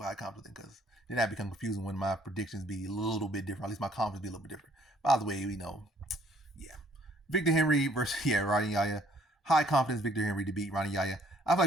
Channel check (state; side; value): normal; both; correlation 0.62